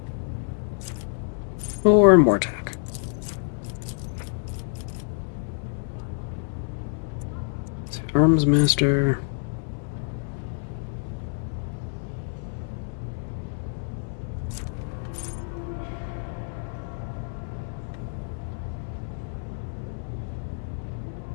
Or more attack. So Arms Master.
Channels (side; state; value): right; silent; 60 dB below the other